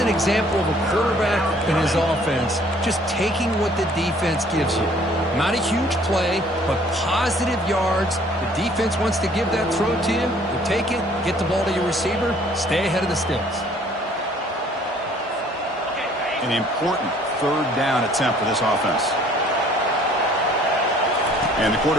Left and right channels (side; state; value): both; normal; correlation 0.57